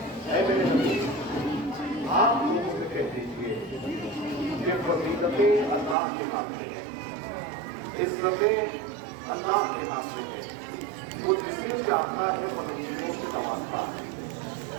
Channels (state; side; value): drops out; left; at 6.0 s